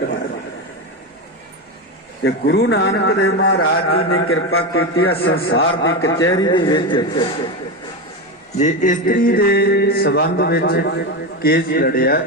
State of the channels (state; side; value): normal; both; correlation 0.16